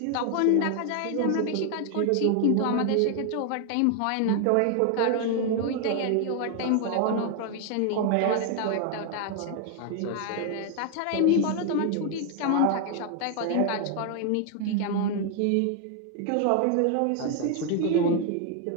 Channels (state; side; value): different; both; correlation 0.00